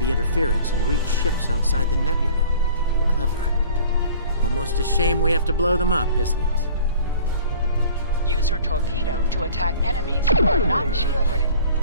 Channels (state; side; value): inverted; both; correlation -0.47